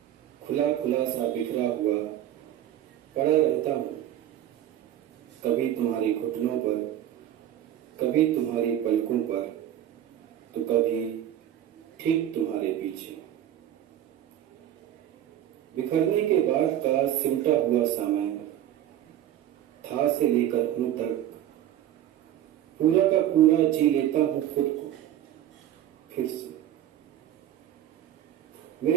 खुला खुला सा बिखरा हुआ पड़ा रहता हूँ, कभी तुम्हारी घुटनों पर, कभी तुम्हारी पलकों पर, तो कभी ठीक तुम्हारे पीछे। बिखरने के बाद का सिमटा हुआ समय, था से लेकर हूं तक, पूरा का पूरा जी लेता हूं खुद को फिर से।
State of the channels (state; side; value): quieter; left; 11.7 dB